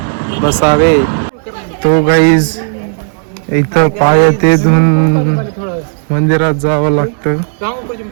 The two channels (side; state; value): left; silent; digital silence